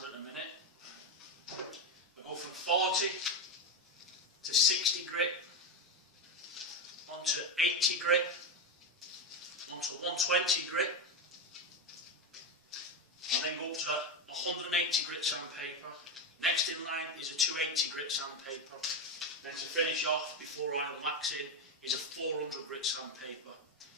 at the minute. I go from 40 to 60 grit, onto 80 grit, onto 120 grit, and then go up to 180 grit sandpaper. Next in line is a 280 grit sandpaper. Then to finish off before I wax in is a 400 grit sandpaper.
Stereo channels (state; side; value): normal; both; correlation 0.12